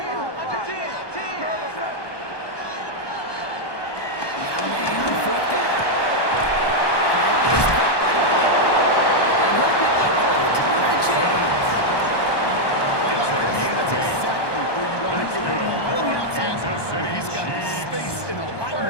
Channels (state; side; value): late; right; 1.2 ms